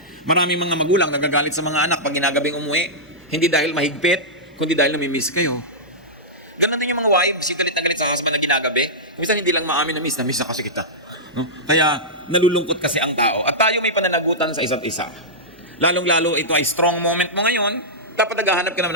Maraming mga magulang nagagalit sa mga anak pag ginagabing umuwi, hindi dahil mahigpit, kundi dahil namimiss kayo. Ganun din yung mga wives, galit na galit sa husband na ginagabi. Kumisan hindi lang maamin na miss na kasi kita. No? Kaya nalulungkot kasi ang tao. At tayo may pananagutan sa isa't isa. Lalong-lalo ito ay strong moment mo ngayon, dapat naghahanap ka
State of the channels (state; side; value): normal; both; correlation -0.12